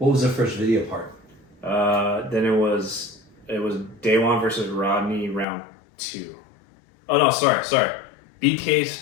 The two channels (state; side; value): drops out; right; at 5.5 s